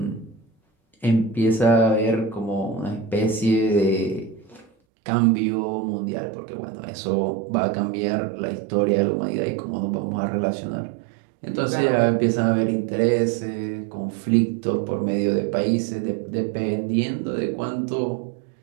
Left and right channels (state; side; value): drops out; left; at 4.7 s